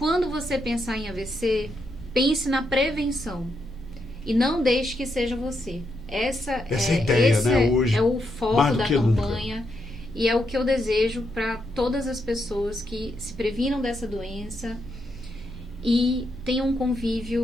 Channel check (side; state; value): both; normal; correlation 0.81